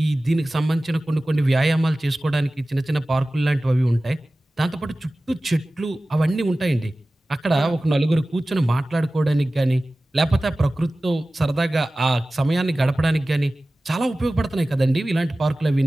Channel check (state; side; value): normal; both; correlation 0.97